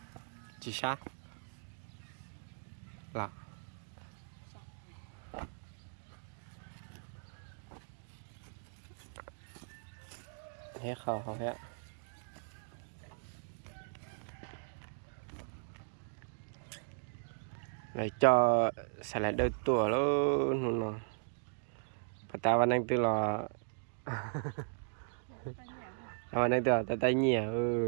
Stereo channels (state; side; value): silent; left; digital silence